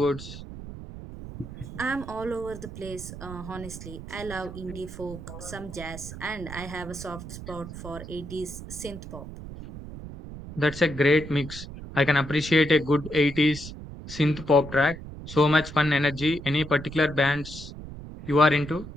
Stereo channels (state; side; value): noise; right; rumble, 12 dB below the sound